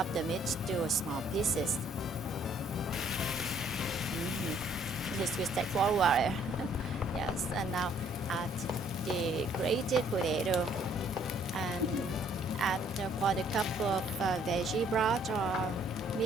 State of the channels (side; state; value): both; normal; correlation 0.63